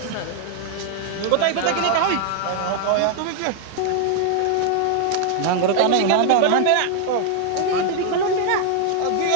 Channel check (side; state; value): both; different; correlation 0.00